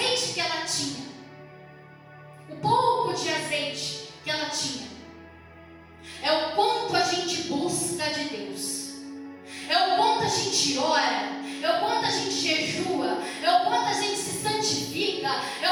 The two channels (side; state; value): both; identical; correlation 1.00